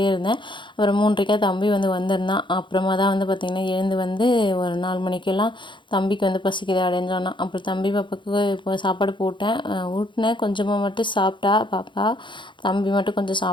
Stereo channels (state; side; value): late; right; 0.23 ms